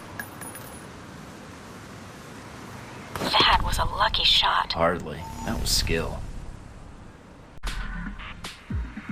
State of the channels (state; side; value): identical; both; correlation 1.00